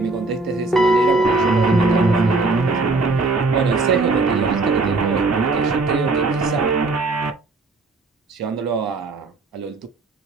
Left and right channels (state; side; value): quieter; left; 3.5 dB